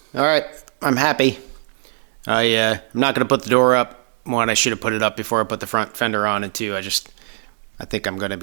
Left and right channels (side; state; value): left; silent; digital silence